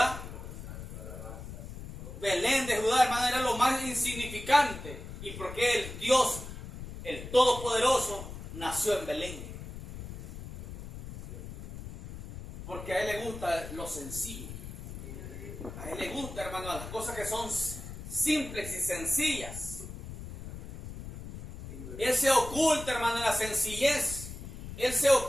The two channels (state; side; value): noise; left; rumble, 11 dB below the sound